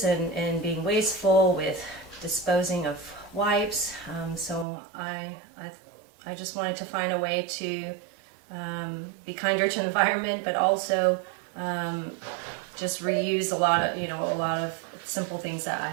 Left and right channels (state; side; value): drops out; left; at 4.7 s